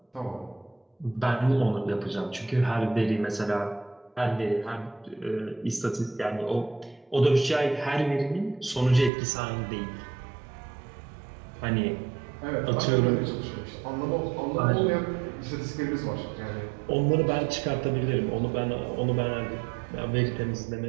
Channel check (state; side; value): drops out; left; at 9.1 s